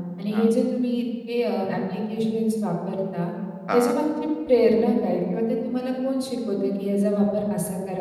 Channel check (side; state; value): both; identical; correlation 1.00